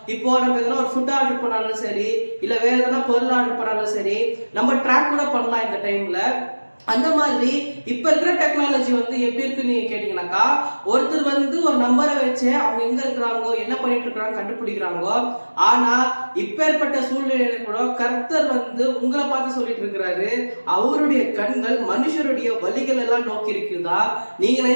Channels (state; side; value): inverted; both; correlation -1.00